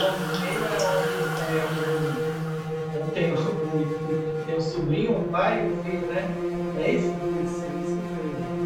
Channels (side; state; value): both; identical; correlation 1.00